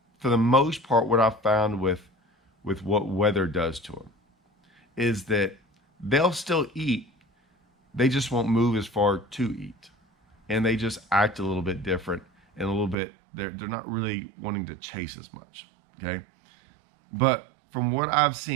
for the most part, what I found with what weather does to them, is that they'll still eat. They just won't move as far to eat. And they just act a little bit different and a little bit, they're not really wanting to chase as much, okay? But from what I've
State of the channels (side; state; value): left; drops out; at 13.0 s